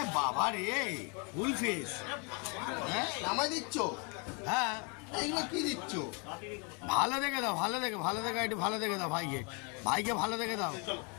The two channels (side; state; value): right; quieter; 34.1 dB